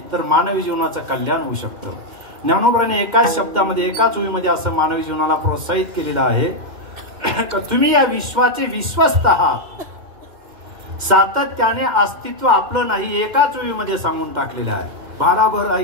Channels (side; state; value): left; late; 2.1 ms